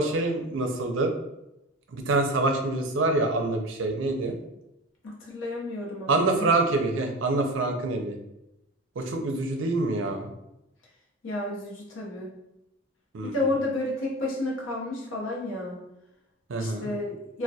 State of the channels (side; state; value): both; normal; correlation 0.29